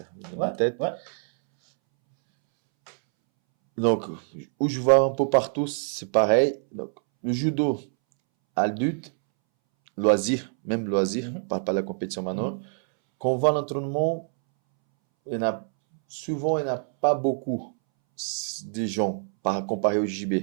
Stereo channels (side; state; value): left; silent; 61 dB below the other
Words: dans ma tête. Ouais. Donc, où je vois un peu partout, c'est pareil. Donc, le judo, adulte, loisir, même loisir, on parle pas de la compétition maintenant. Quand on va à l'entraînement, souvent, il n'y en a pas beaucoup de gens comparé au JB.